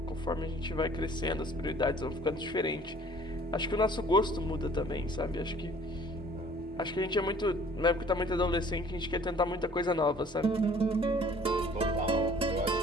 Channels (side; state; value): both; normal; correlation 0.53